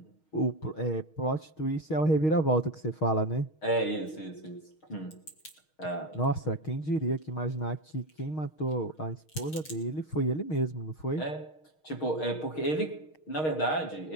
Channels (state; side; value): late; right; 6.4 ms